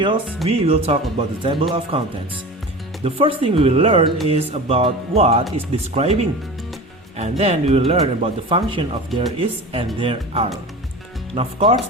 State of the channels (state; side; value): normal; both; correlation 0.33